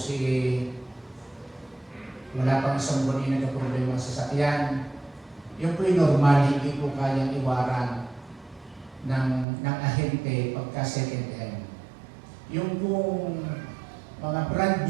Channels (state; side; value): drops out; left; at 9.5 s